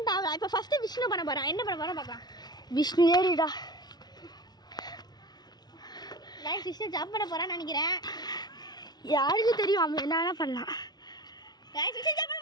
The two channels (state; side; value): late; right; 0.19 ms